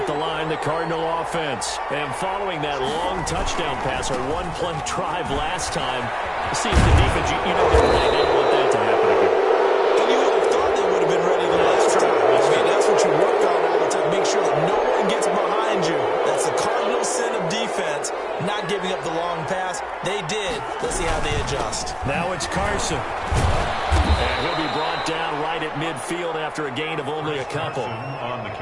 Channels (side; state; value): both; identical; correlation 1.00